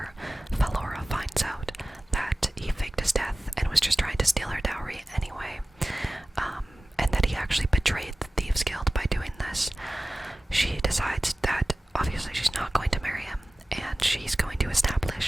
Valora finds out that he faked his death and was just trying to steal her dowry anyway, and that he actually betrayed the Thieves Guild by doing this, she decides that obviously she's not going to marry him, and she's going to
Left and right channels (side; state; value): both; normal; correlation 0.96